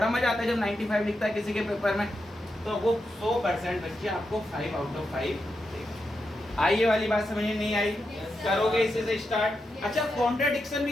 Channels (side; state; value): both; normal; correlation 0.86